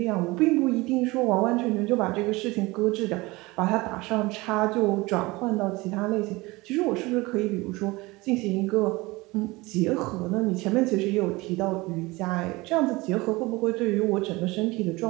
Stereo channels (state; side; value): quieter; left; 22.3 dB